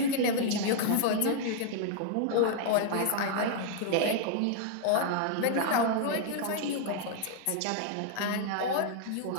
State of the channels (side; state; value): both; different; correlation -0.01